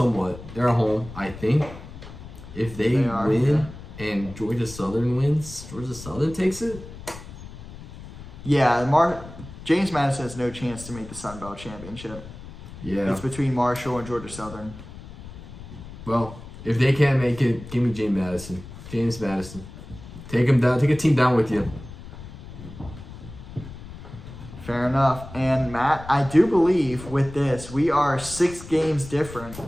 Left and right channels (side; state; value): left; noise; rumble, 14 dB below the sound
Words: They're at home, I think. If they win and Georgia Southern wins, Georgia Southern takes it? Yeah, James Madison has no chance to make the Sun Belt Championship. Yeah. It's between Marshall and Georgia Southern. Well, if they can't make it, give me James Madison. James Madison. Take him down. Take a team down with you. Fair enough. And Matt, I do believe with this, we are 6 games different.